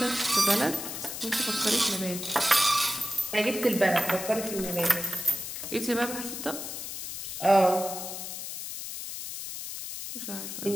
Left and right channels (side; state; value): left; noise; hiss, 7 dB below the sound